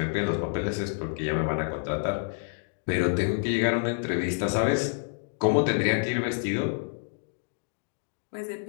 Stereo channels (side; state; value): right; silent; digital silence